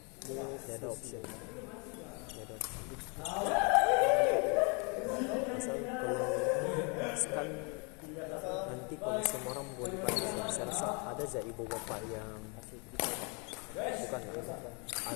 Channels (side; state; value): right; quieter; 33.7 dB